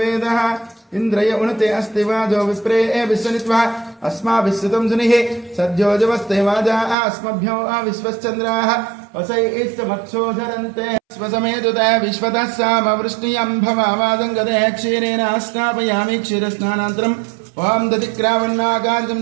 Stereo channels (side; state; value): left; drops out; at 7.0 s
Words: इंद्रय उनते अस्ति वाजो विप्रे विश्वनित्वा अस्माभिस्सुतं सुनिः सद्योजवस्ते वाजा अस्मभ्यो विश्वश्चन्द्राः वसैस्तमक्षोधरन्ते स्वसमेतुते विश्वतः सामवृष्टियं भवावादङ्गते क्षीरेण स्नापयामि क्षीरस्नानान्तरम् ओम दधिक्रावन्नागार्जं